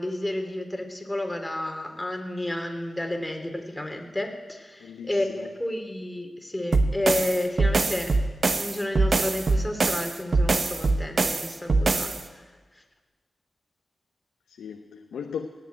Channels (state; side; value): normal; both; correlation 0.93